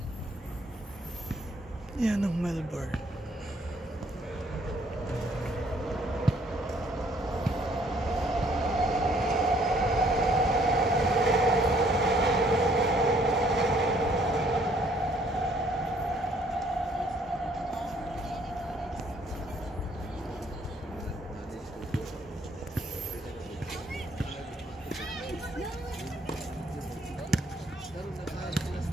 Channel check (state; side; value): normal; both; correlation 0.63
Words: Yan ang Melbourne.